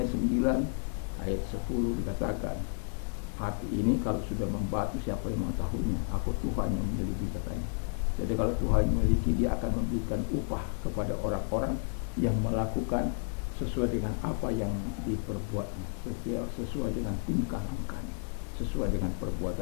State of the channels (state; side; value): silent; right; 57 dB below the other